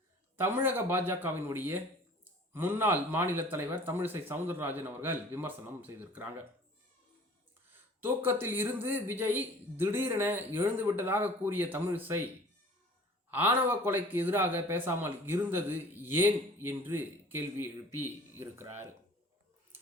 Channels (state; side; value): normal; both; correlation 0.48